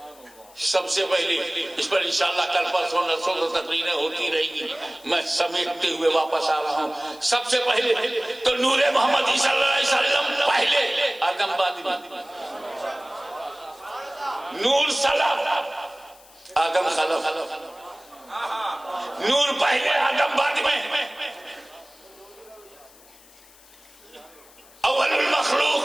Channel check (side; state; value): left; noise; hiss, 25 dB below the sound